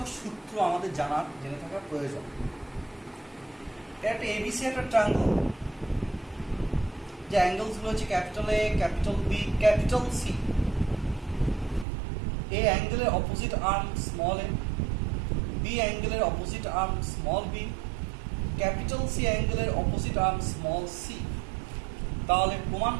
সূত্র আমাদের জেনে থাকার প্রয়োজন। একটা এবিসি একটা ট্রায়াঙ্গল, যে অ্যাঙ্গেলসগুলো হচ্ছে capital A, capital B, capital C. A অ্যাঙ্গেলের opposite arm small a, B অ্যাঙ্গেলের opposite arm small b, capital C অ্যাঙ্গেলের অপোজিট আর্ম স্মল সি। তাহলে প্রমাণ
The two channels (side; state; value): left; drops out; at 11.9 s